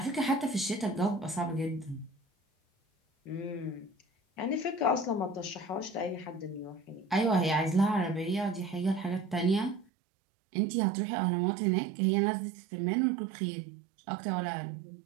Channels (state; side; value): drops out; left; at 9.9 s